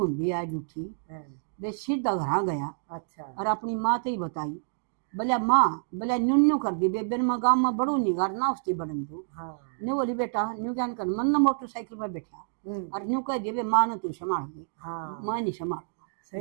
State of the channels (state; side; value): silent; left; digital silence